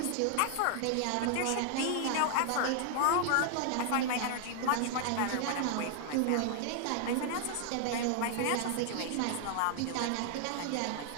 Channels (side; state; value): both; different; correlation 0.00